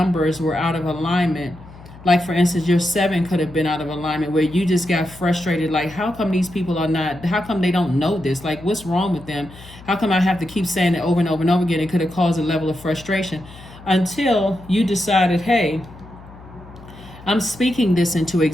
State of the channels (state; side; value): noise; left; hum, 19 dB below the sound